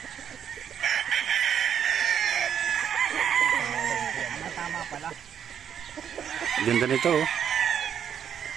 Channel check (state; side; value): quieter; left; 8.6 dB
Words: Tama pala. Ganda nito, oh.